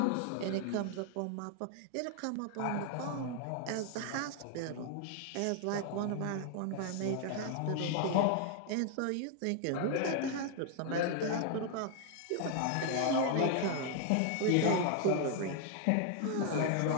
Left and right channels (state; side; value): different; both; correlation 0.00